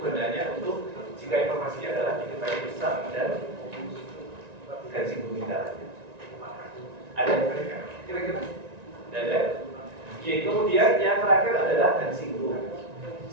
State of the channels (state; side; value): late; left; 1.9 ms